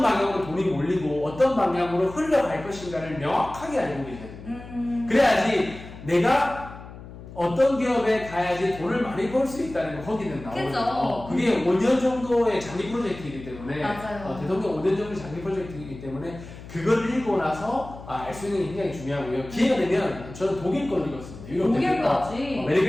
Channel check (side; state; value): left; noise; hum, 15 dB below the sound